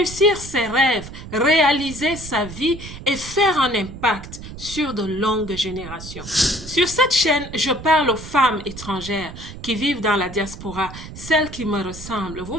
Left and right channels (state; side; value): noise; right; rumble, 12 dB below the sound